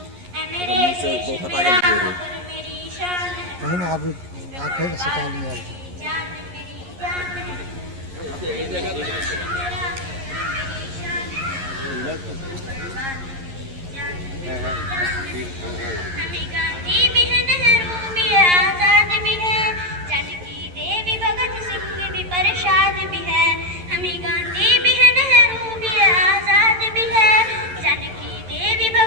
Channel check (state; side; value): late; left; 11 ms